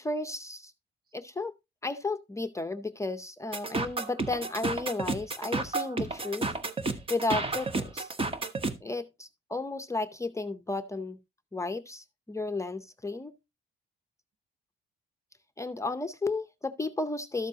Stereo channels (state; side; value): normal; both; correlation 0.57